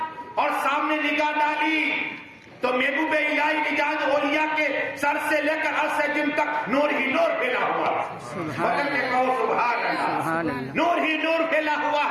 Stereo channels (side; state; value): both; identical; correlation 1.00